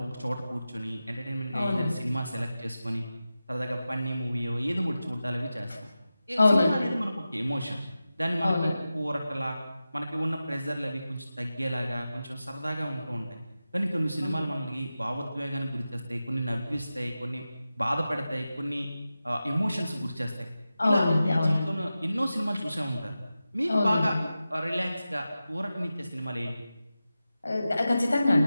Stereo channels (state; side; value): inverted; both; correlation -0.93